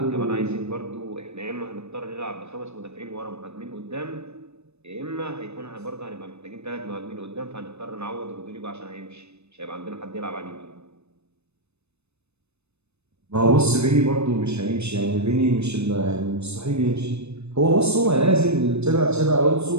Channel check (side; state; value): left; late; 0.81 ms